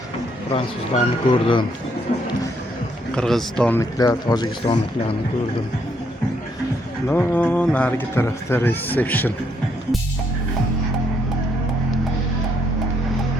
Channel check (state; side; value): normal; both; correlation 0.73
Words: Fransuzlarni ko'rdim. Qirg'izistonliklar, Tojikistonliklarni ko'rdim. No, narigi tarafda reception.